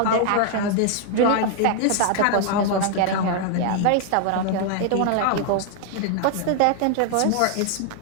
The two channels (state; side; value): different; both; correlation 0.00